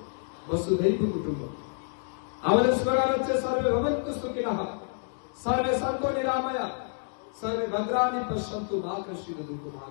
বসুধৈব কুটুম্বকম। আমাদের স্লোগান হচ্ছে সর্বে ভবন্তু সুখিনঃ সর্বে সন্তু নিরাময়া সর্বে ভদ্রাণি পশ্যন্তু মা কশ্চিৎ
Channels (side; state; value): right; silent; 59 dB below the other